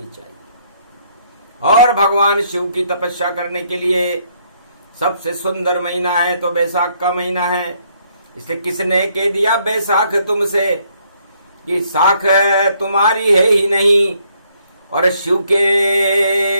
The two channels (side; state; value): both; inverted; correlation -0.69